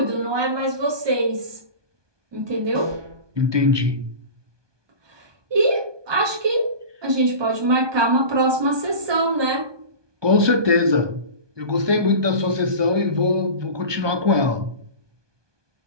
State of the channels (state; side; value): late; left; 1.2 ms